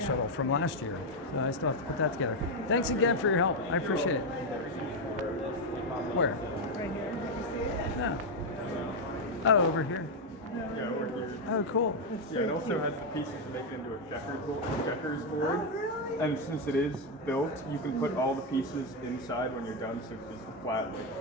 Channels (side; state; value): both; normal; correlation 0.03